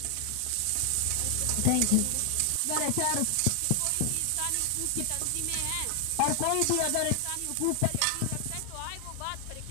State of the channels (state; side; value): different; both; correlation 0.00